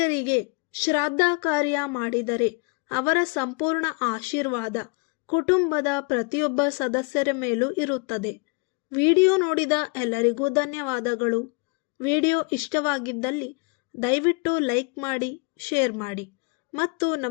ಶ್ರಾದ್ದ ಕಾರ್ಯ ಮಾಡಿದರೆ ಅವರ ಸಂಪೂರ್ಣ ಆಶೀರ್ವಾದ ಕುಟುಂಬದ ಪ್ರತಿಯೊಬ್ಬ ಸದಸ್ಯರ ಮೇಲೂ ಇರುತ್ತದೆ. ವಿಡಿಯೋ ನೋಡಿದ ಎಲ್ಲರಿಗೂ ಧನ್ಯವಾದಗಳು. ವಿಡಿಯೋ ಇಷ್ಟವಾಗಿದ್ದಲ್ಲಿ ದಯವಿಟ್ಟು ಲೈಕ್ ಮಾಡಿ, ಶೇರ್ ಮಾಡಿ ಮತ್ತು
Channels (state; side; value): quieter; right; 31.8 dB